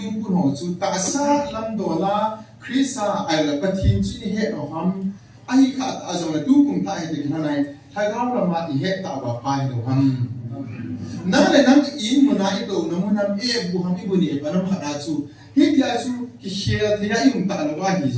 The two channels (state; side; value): identical; both; correlation 1.00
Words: kun ho chu ta sa lam dola krisa ai la pathin chi ni he no ham ai kha a zo la tu kum ta he de na nai tha gaw la ma i he ta wa pai do ham na le nam in mo na i do na mo nam e bu ham i bu ni pa nam kha chu hi dia chu ki share thia i um ta la wa hi